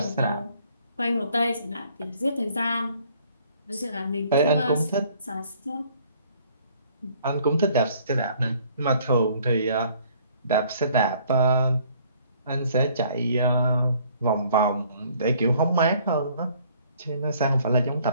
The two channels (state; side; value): inverted; both; correlation -0.60